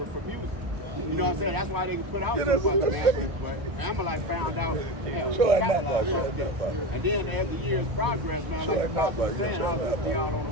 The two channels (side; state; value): left; late; 1.0 ms